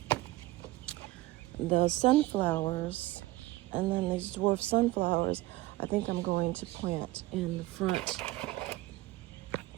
the sunflowers, and then these dwarf sunflowers, I think I'm going to plant in the front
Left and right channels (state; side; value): quieter; left; 18.5 dB